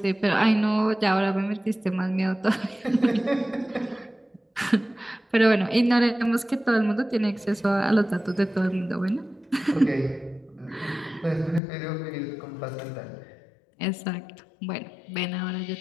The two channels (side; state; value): right; drops out; at 11.6 s